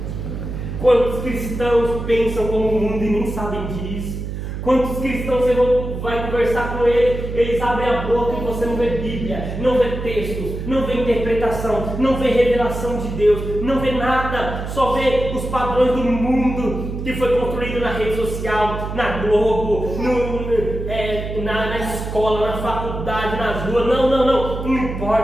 Quantos cristãos pensam como o mundo e nem sabem disso? Quantos cristãos você vai conversar com eles abrem a boca e você não vê Bíblia, não vê textos, não vê interpretação, não vê revelação de Deus, não vê nada, só vê os padrões do mundo que foi construído na rede social, na Globo, na escola, na faculdade, nas ruas. Não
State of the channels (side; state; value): right; noise; hum, 6 dB below the sound